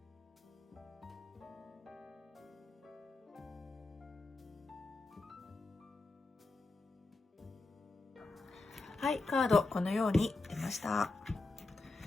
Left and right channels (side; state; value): right; quieter; 3.3 dB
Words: はい、カードこのように出ました。